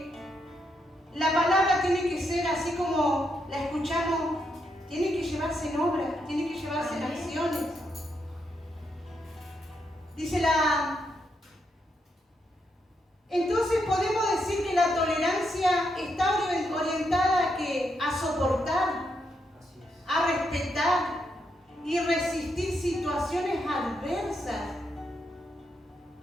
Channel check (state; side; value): normal; both; correlation 0.80